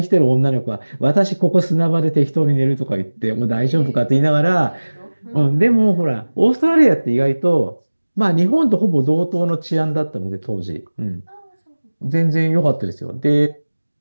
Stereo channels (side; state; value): both; inverted; correlation -1.00